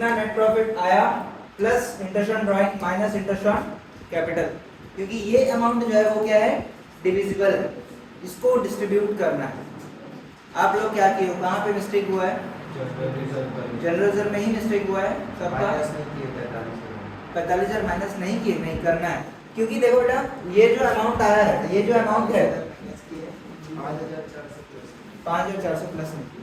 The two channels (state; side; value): identical; both; correlation 1.00